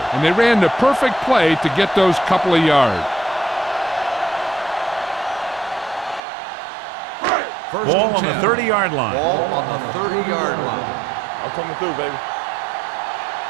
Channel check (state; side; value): drops out; left; at 6.2 s